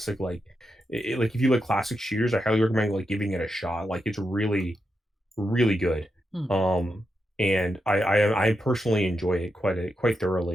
like if you like classic shooters, I highly recommend like giving it a shot. Like it's really really good. Hmm. Um and I personally enjoy it quite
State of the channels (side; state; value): both; normal; correlation 0.86